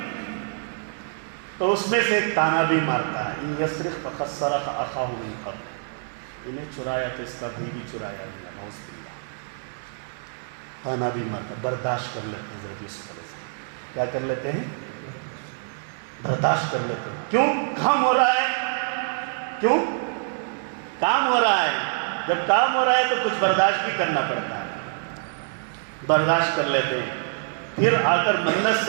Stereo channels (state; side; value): silent; left; digital silence